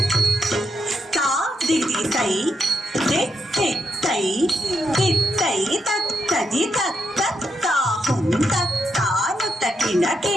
తాదిది తై తై తిత్తై తత్తది తత్తాహుం తత్తాను తకిన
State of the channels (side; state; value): both; normal; correlation 0.82